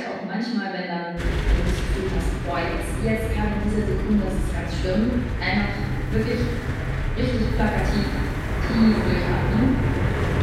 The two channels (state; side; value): identical; both; correlation 1.00